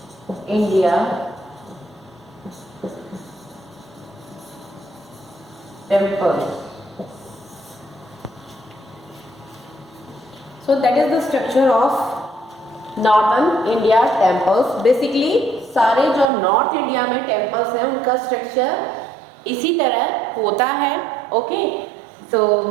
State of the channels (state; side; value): drops out; left; at 16.3 s